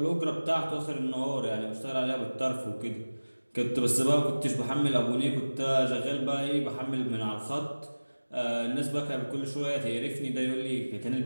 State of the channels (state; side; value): inverted; both; correlation -1.00